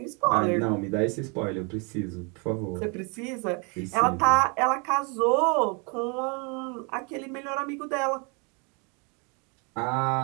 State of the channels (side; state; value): left; quieter; 33.3 dB